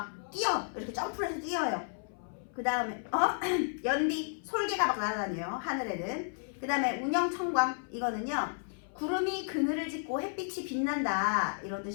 뛰어 이렇게 점프를 해서 뛰어요. 그 다음에 연비 솔개가 막 날아다녀요 하늘에는. 그 다음에 운영천광 이거는요 구름이 그늘을 짓고 햇빛이 빛난다 이런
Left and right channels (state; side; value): silent; right; 56 dB below the other